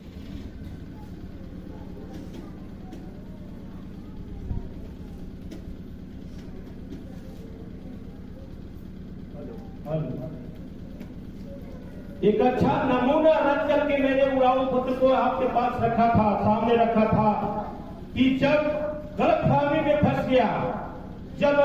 नमूना रख करके मैंने उड़ाऊ पुत्र को आपके पास रखा था, सामने रखा था कि जब गलतफहमी में फंस गया, जब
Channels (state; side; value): identical; both; correlation 1.00